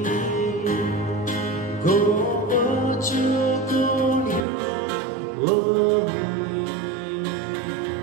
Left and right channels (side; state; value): left; drops out; at 4.4 s